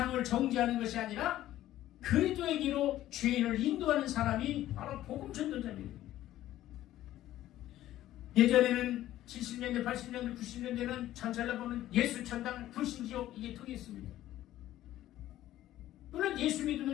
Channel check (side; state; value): right; quieter; 13.9 dB